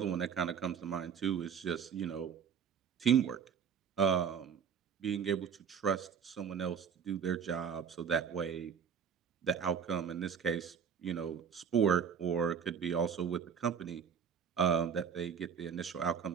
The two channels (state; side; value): quieter; left; 7.2 dB